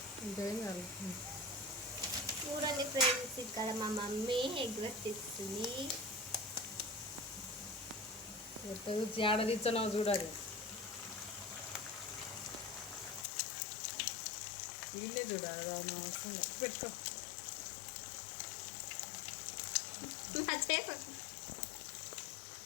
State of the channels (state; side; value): drops out; right; at 13.2 s